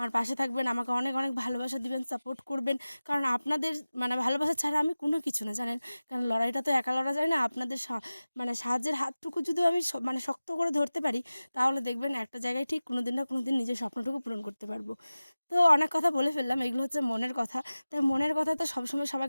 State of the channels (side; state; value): both; inverted; correlation -0.97